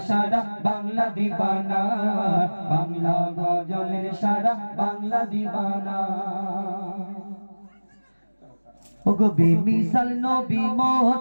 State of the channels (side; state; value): both; inverted; correlation -1.00